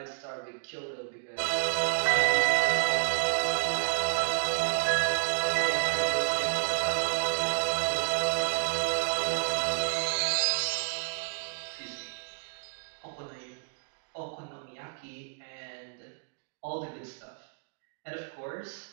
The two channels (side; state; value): left; silent; digital silence